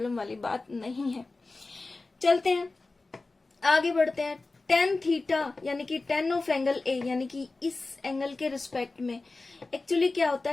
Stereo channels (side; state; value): right; quieter; 3.5 dB